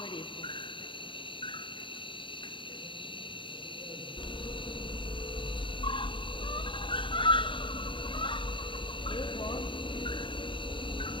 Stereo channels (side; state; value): right; late; 0.24 ms